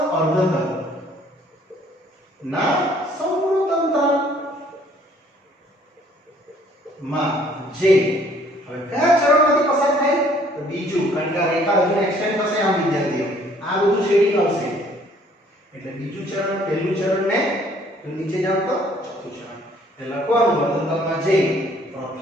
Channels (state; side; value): normal; both; correlation 0.60